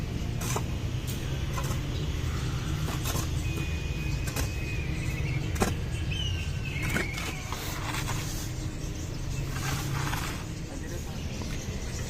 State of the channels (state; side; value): identical; both; correlation 1.00